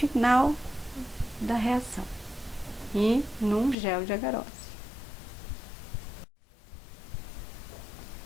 da reação e num gel de agarose.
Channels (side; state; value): right; drops out; at 3.8 s